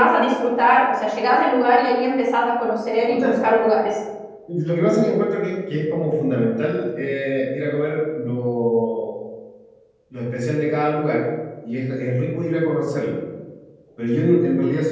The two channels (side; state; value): both; identical; correlation 1.00